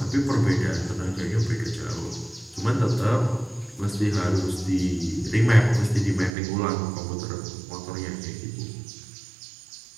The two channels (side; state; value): left; drops out; at 6.3 s